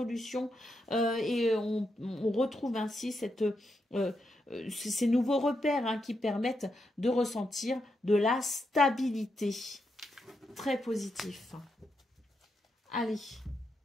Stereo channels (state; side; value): normal; both; correlation 0.83